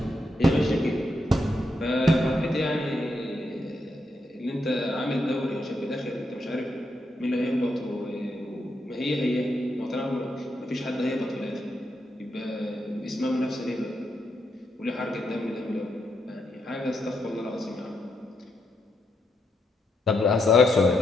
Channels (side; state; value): both; normal; correlation 0.81